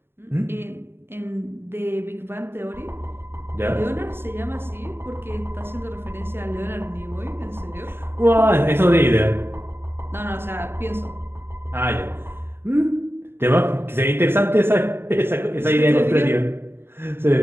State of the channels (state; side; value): late; left; 0.11 ms